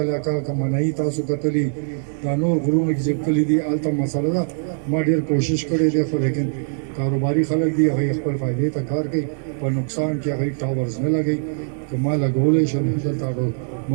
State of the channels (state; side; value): silent; left; digital silence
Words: علاقه کمنای تاسو کتلی دا نور غرونه کې چې کلی دي الته مسله ده ما ډیر کوشش کړی دی خو لیکن کاروباري خلک دي هغه خپل فائدې ته کار کوي په نقصان کې هغه ټاورز نه لګي که ما لګولې شم دلته